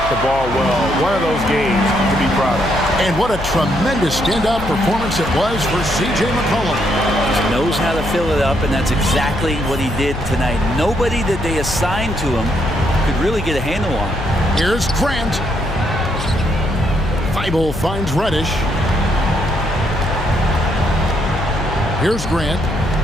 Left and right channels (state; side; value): noise; left; hum, 9 dB below the sound